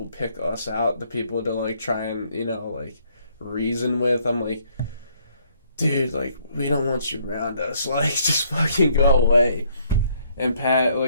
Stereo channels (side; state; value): both; inverted; correlation -0.67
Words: pick us out, the people to, like, try and, you know, like, reason with. I'm like, dude, like, we don't want you around us. Like, just fucking go away. And Pat,